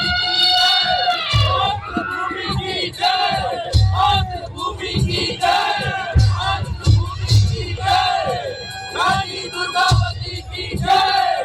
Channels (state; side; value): identical; both; correlation 1.00